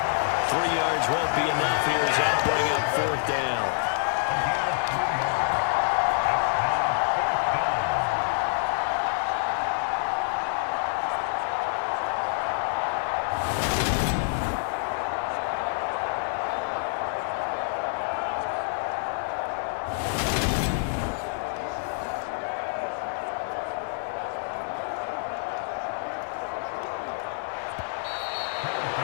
3 yards won't be enough here as they'll bring up 4th down.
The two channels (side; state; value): right; silent; 60 dB below the other